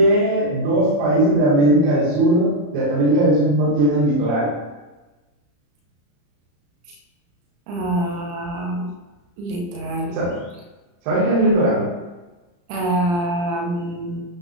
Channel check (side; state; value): left; late; 35 ms